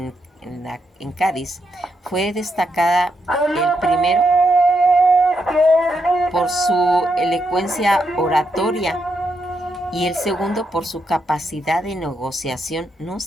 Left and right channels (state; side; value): normal; both; correlation 0.81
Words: Cádiz fue destacada, el primero por su elocuencia oratoria y el segundo por su capacidad de negociación. No